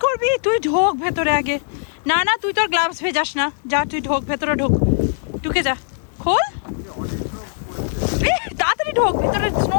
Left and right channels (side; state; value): right; silent; digital silence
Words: করবি? তুই ঢোক ভেতরে আগে। না না, তুই তোর গ্লাভস ভেজাস না, যা তুই ঢোক ভেতরে, ঢোক, ঢুকে যা, খোল তাড়াতাড়ি ঢোক ভেতরে, স্নো